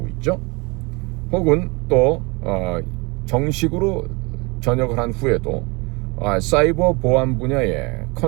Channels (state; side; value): quieter; left; 27.7 dB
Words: 있죠. 혹은 또 정식으로 전역을 한 후에도 사이버 보안 분야의